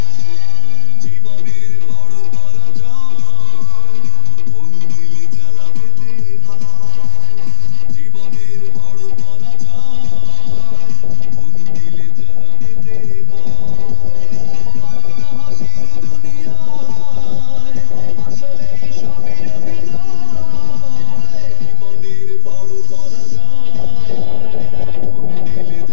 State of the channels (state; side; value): different; both; correlation 0.00